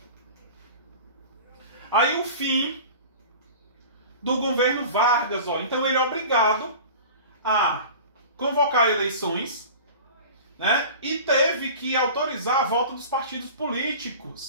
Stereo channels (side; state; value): both; inverted; correlation -0.38